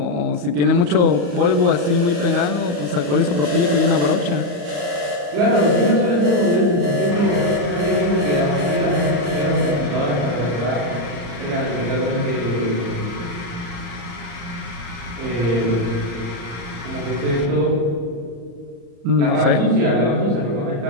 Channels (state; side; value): late; left; 34 ms